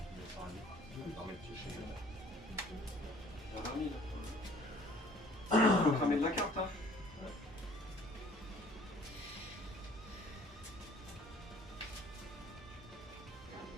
Faut cramer de la carte, hein.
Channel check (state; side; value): normal; both; correlation 0.54